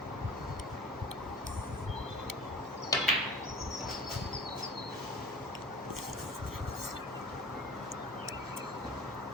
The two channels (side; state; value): both; normal; correlation 0.40